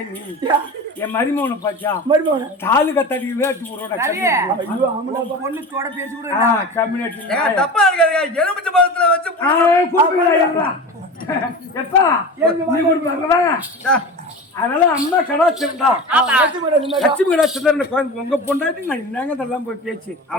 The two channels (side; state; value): both; normal; correlation 0.31